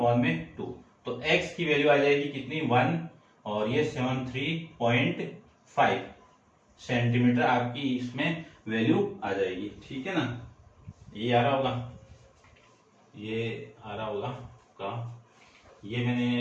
तो x की वैल्यू आ जाएगी कितनी 1 और ये 73.5 सेंटीमीटर आपकी इसमें वैल्यू आ जाएगी, ठीक है ना। ये आ रहा होगा का, ये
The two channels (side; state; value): both; identical; correlation 1.00